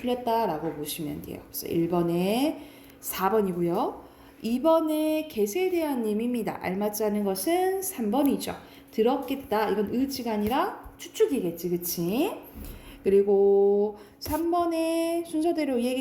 보시면 돼요. 그래서 1번에 4번이고요. 2번에 개세에 대한 의미입니다. 알맞지 않은 것은 3번이죠. 들었겠다. 이건 의지가 아니라 추측이겠지. 그치? 그리고 3번에 순서대로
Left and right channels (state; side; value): identical; both; correlation 1.00